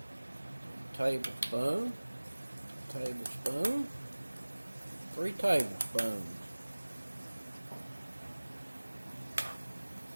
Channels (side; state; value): both; inverted; correlation -1.00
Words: Tablespoon, 3 tablespoons.